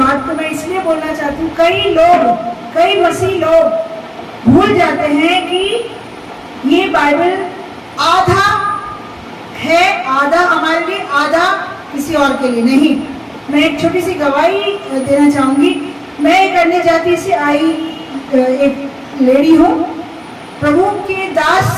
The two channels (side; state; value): both; identical; correlation 1.00